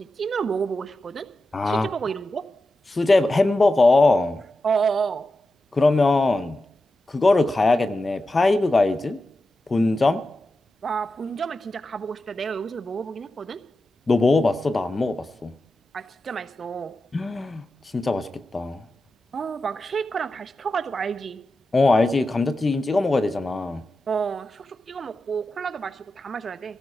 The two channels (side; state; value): both; normal; correlation 0.91